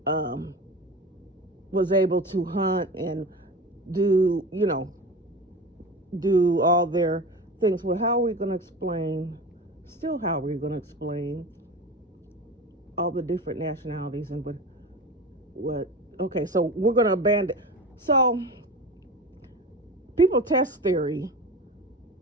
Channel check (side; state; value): both; normal; correlation 0.31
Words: was able to hunt and do all their things. Well, how are we going to explain all the different nationalities and what okay, so we're going to abandon. So people test theory,